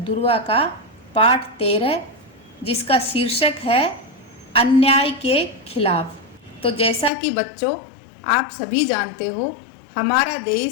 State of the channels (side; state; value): right; drops out; at 7.1 s